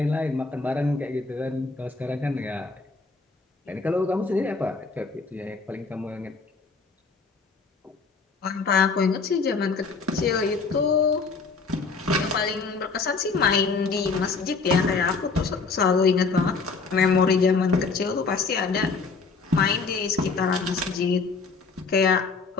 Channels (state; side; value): quieter; right; 4.5 dB